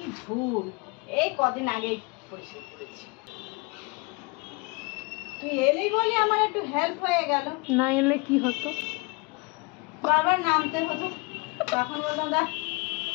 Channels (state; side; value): quieter; right; 28.3 dB